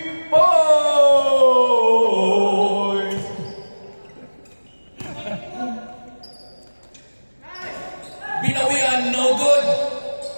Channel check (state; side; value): inverted; both; correlation -1.00